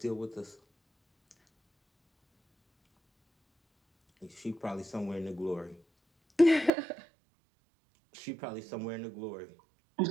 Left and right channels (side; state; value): left; drops out; at 6.7 s